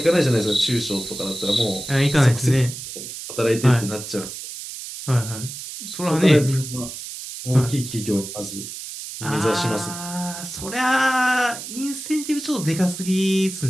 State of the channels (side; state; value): right; noise; hiss, 10 dB below the sound